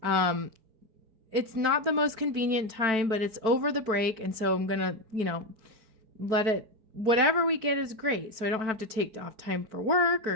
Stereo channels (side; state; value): left; late; 4.5 ms